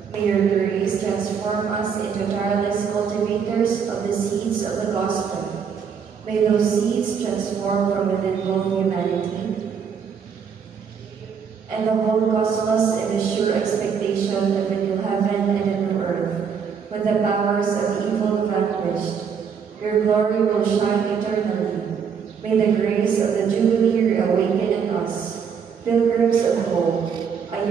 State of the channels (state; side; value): quieter; left; 6.8 dB